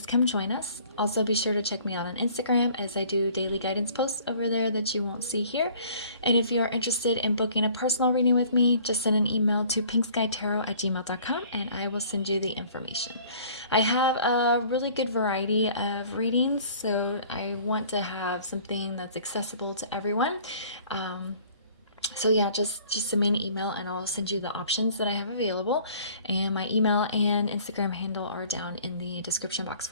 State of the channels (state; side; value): inverted; both; correlation -0.53